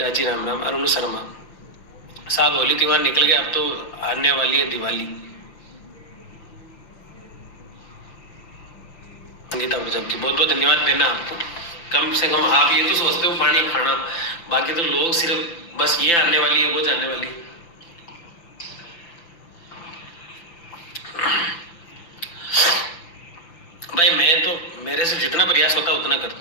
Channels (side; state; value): right; late; 5.9 ms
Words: जी राम राम। अरुण शर्मा साहब होली त्योहार निकल गया, अब तो आने वाली है दिवाली। संगीता प्रजापति बहुत बहुत धन्यवाद देना आपको। कम से कम आप ये तो सोचते हो पानी खाना, बाकी तो लोग सिर्फ बस ये आने वाली है वो जाने वाली है। भाई मैं तो मेरे से जितना प्रयास होता है उतना